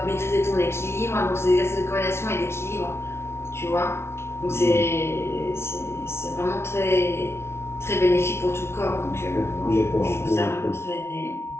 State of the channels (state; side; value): late; right; 0.12 ms